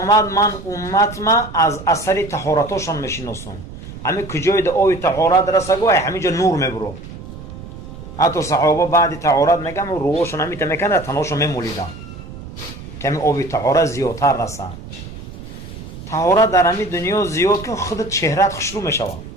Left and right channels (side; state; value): right; noise; rumble, 13 dB below the sound